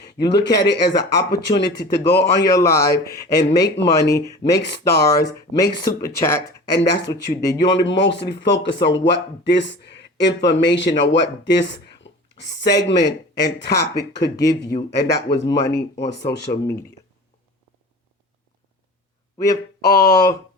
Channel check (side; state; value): both; normal; correlation 0.38